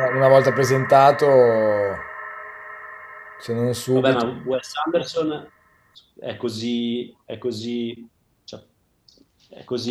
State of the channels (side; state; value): both; identical; correlation 1.00